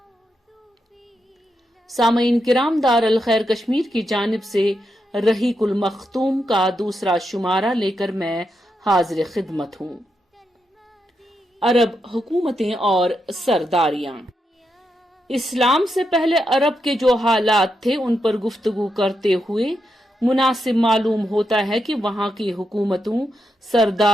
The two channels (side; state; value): both; normal; correlation 0.84